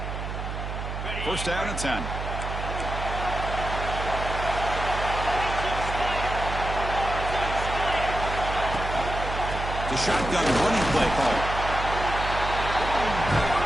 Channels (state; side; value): noise; right; hum, 5 dB below the sound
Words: First down and 10. The shotgun running play call.